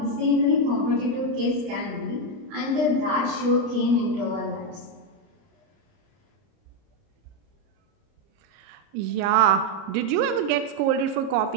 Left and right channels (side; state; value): left; late; 30 ms